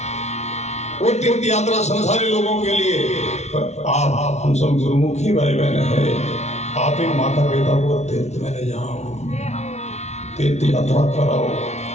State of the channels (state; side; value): late; right; 0.32 ms